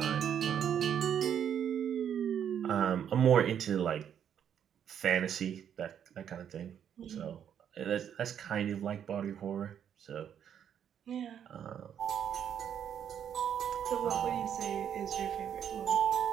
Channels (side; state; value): left; quieter; 8.9 dB